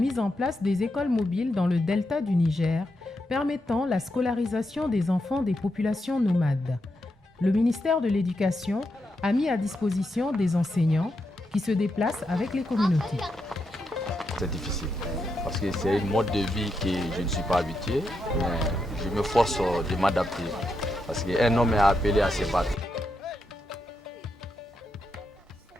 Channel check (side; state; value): both; normal; correlation 0.84